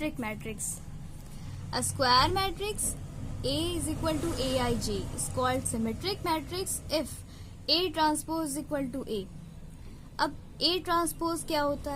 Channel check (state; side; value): identical; both; correlation 1.00